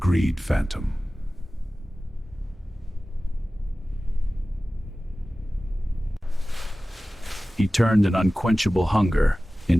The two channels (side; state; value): both; normal; correlation 0.96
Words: phantom. He turned an unquenchable hunger